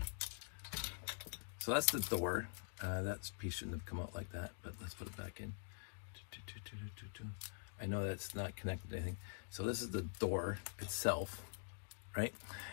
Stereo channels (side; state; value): right; silent; digital silence